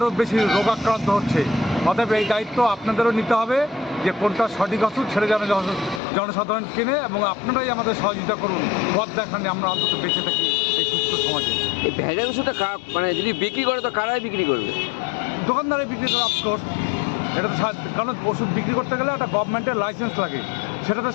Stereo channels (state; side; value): drops out; right; at 6.0 s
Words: বেশি রোগাক্রান্ত হচ্ছে। অতএব এই দায়িত্ব আপনাদেরও নিতে হবে যে কোনটা সঠিক ওষুধ ছেড়ে যেন জনসাধারণ কেনে, এবং আপনারাই আমাদের সহযোগিতা করুন, পথ দেখান, আমরা অন্তত বেঁচে থাকি এই সুস্থ সমাজে। এই ভেজাল ওষুধটা মানে যদি বিক্রি করে তো কারাই বিক্রি করবে? দোকানদারে বিক্রি করে অফকোর্স। এটা তো কারণ ওষুধ বিক্রি করতে গেলে একটা গভর্নমেন্টের লাইসেন্স লাগে, সেটা তো